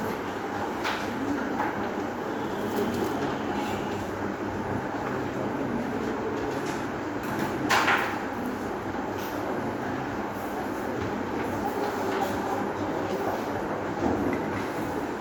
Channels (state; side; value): identical; both; correlation 1.00